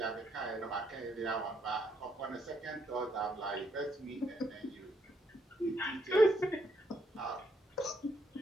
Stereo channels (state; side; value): normal; both; correlation 0.74